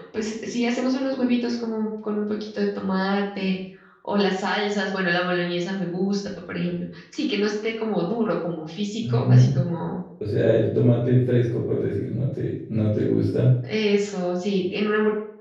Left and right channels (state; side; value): identical; both; correlation 1.00